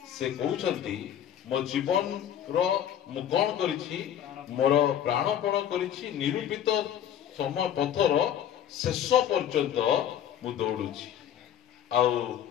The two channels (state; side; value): quieter; right; 10.2 dB